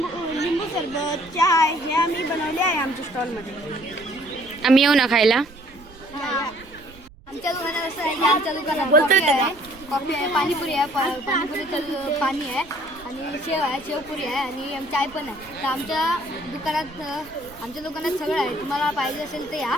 सरबत, चाय हे आम्ही बनवले आहे. आमच्या स्टॉलमध्ये आम्ही येऊ ना खायला. आमच्या दुकानात असं आहे की आमच्या दुकानात कॉफी आहे, पाणीपुरी आहे, पाणीपुरीचं पाणी आहे आणि शेव आहे, शेवपुरी आहे आणि चाय पण आहे. तर आमच्या दुकानात सगळं आहे. तुम्हाला पाहिजे असेल तर या.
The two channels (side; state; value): right; noise; rumble, 22 dB below the sound